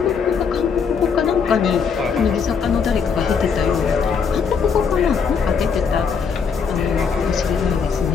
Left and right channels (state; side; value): quieter; right; 6.0 dB